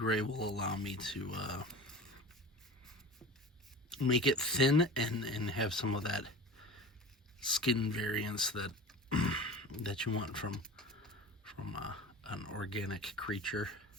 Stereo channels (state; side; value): normal; both; correlation 0.36